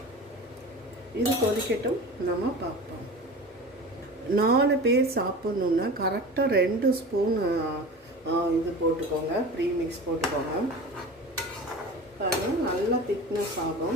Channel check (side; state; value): both; normal; correlation 0.34